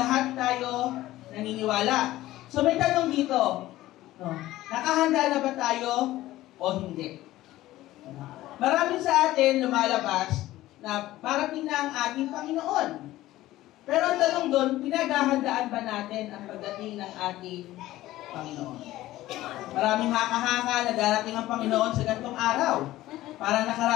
tayo naniniwala. So, may tanong dito. No? Nakahanda na ba tayo o hindi? Marami sa atin lumalabas na parating na ang ating Panginoon. Pero ang tanong doon, pinaghahandaan ba natin ang pagdating ng ating Panginoon? Maraming haka-haka na darating ang Panginoon sa ganitong araw. Parang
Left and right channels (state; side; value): quieter; right; 15.9 dB